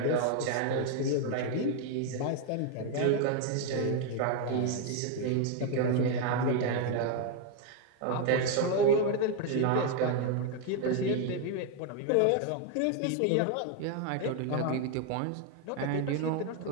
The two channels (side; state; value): both; different; correlation 0.01